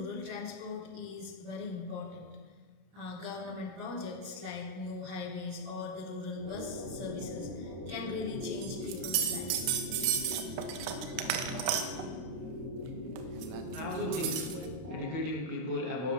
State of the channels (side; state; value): left; late; 32 ms